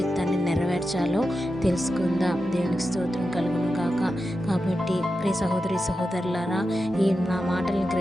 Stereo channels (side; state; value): both; normal; correlation 0.90